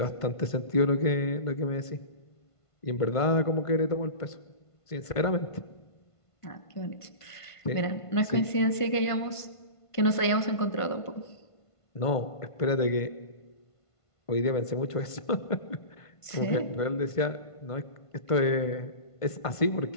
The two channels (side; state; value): right; late; 1.5 ms